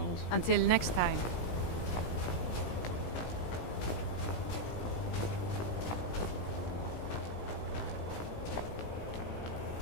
Until next time.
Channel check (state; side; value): late; right; 17 ms